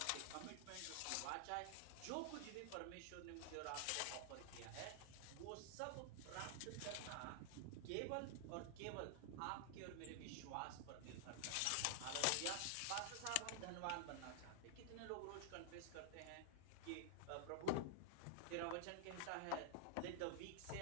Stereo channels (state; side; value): different; both; correlation 0.00